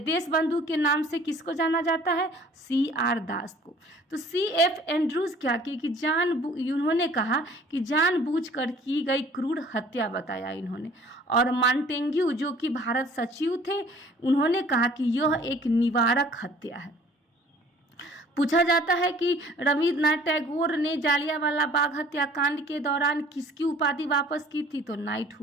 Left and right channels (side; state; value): both; normal; correlation 0.52